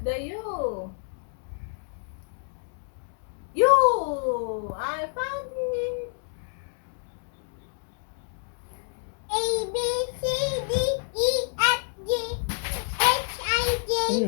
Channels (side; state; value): right; silent; digital silence